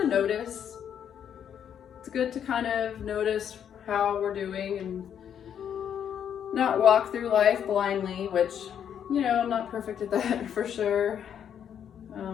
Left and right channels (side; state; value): right; quieter; 8.8 dB